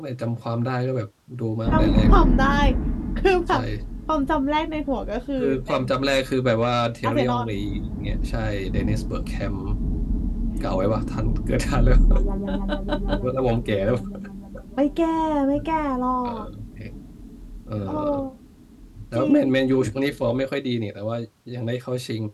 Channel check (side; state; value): both; identical; correlation 1.00